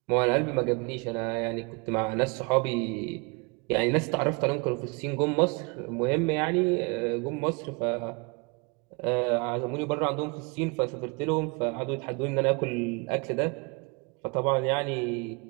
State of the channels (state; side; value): quieter; left; 30.7 dB